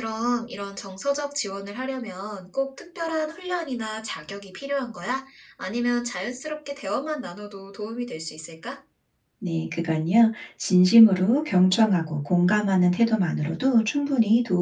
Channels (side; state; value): both; identical; correlation 1.00